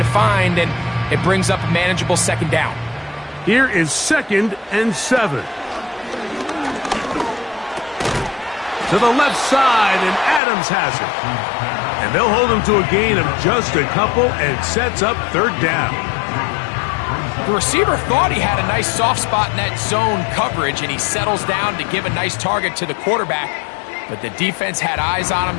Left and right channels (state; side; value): drops out; right; at 10.4 s